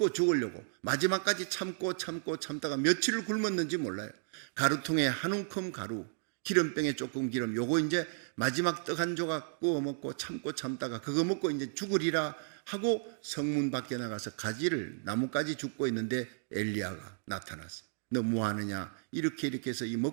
죽으려고 마지막까지 참다가 며칠을 굶었는지 몰라요. 가루통에 한 움큼 가루, 기름병에 조금 기름, 요거 이제 마지막 떡 한 조각 구워 먹고 참다가 그거 먹고 이제 죽으리라 하고 성문 밖에 나가서 가지를, 나뭇가지 줍고 있는데 엘리야가 나타났어요. 너 뭐 하느냐? 이렇게 해서 이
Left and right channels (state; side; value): silent; left; digital silence